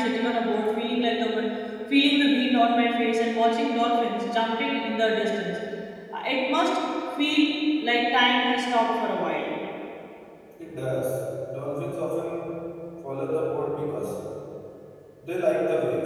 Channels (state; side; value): identical; both; correlation 1.00